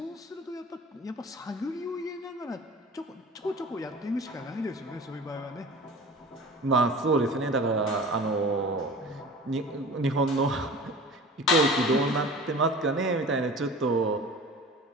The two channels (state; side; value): normal; both; correlation 0.39